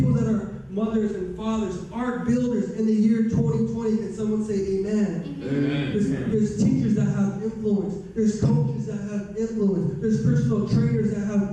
that are mothers and fathers, ark builders in the year 2020. Can someone say amen? Amen. There's teachers that have influence. There's coaches that have influence. There's personal trainers that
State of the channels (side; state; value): both; identical; correlation 1.00